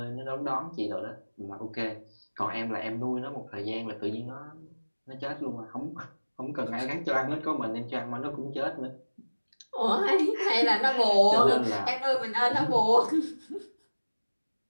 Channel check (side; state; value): both; inverted; correlation -1.00